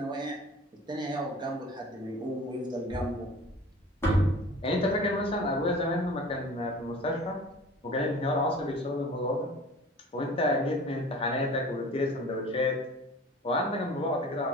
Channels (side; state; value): both; normal; correlation 0.43